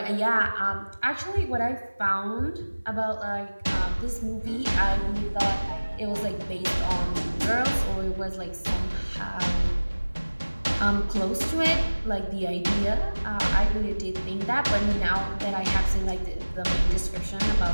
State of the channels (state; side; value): inverted; both; correlation -1.00